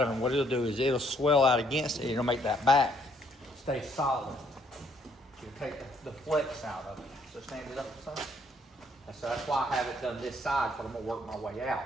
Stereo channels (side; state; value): both; normal; correlation 0.67